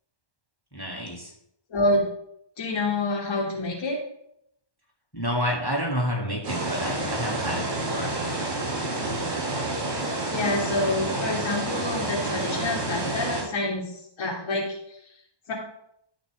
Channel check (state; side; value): late; right; 1.1 ms